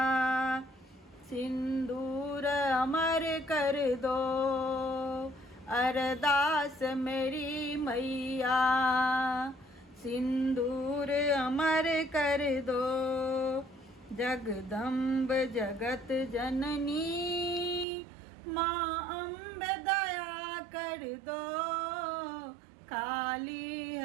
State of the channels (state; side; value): drops out; left; at 17.9 s